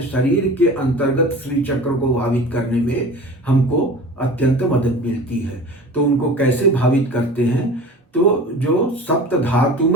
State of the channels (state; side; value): normal; both; correlation 0.38